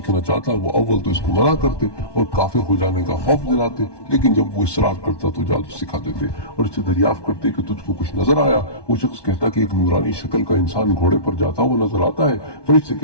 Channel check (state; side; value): late; right; 1.2 ms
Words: چاہتا وہ اول تو اس کو منع کرتے اور کافر ہو جانے کا خوف دلاتے، لیکن جب وہ اصرار کرتا تو جادو سکھا دیتے اور اس سے دریافت کرتے کہ تجھ کو کچھ نظر آیا۔ وہ شخص کہتا کہ ایک نورانی شکل کا انسان گھوڑے پر جاتا وہ نظر آتا ہے۔ فرشتے